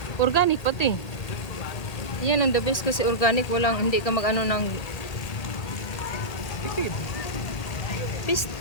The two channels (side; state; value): right; late; 1.8 ms